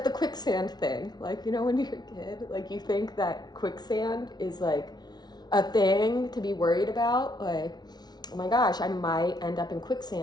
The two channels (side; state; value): right; late; 0.19 ms